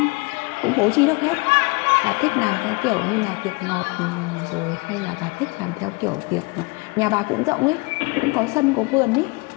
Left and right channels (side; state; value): right; quieter; 27.5 dB